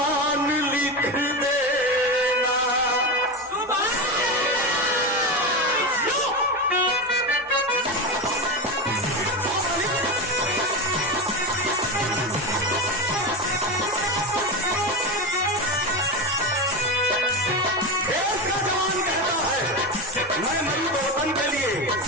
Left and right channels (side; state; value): both; normal; correlation 0.19